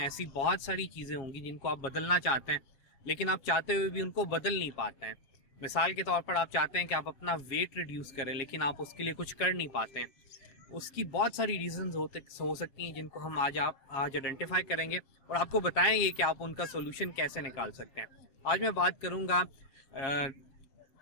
बहुत सारी चीज़ें होंगी जिनको आप बदलना चाहते हैं, लेकिन आप चाहते हुए भी उनको बदल नहीं पाते हैं। मिसाल के तौर पर आप चाहते हैं कि आप अपना वेट रिड्यूस करें, लेकिन आप उसके लिए कुछ कर नहीं पाते हैं। उसकी बहुत सारी रीजंस हो सकती हैं जिनको हम आज आइडेंटिफाई करेंगे और आपको बताएंगे कि आप उनका सोल्यूशन कैसे निकाल सकते हैं। आज मैं बात करूंगा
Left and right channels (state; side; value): late; right; 7.3 ms